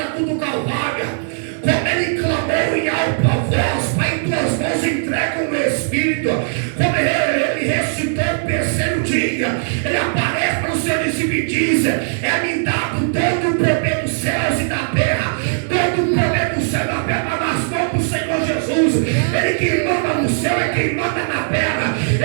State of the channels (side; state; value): left; silent; digital silence